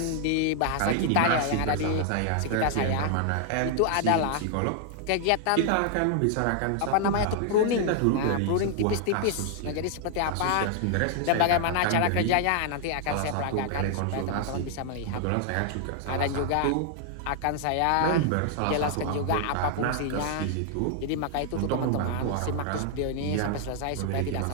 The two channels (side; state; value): both; different; correlation 0.00